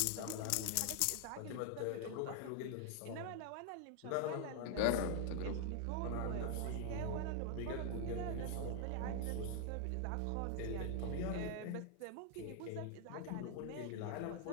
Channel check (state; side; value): different; both; correlation 0.00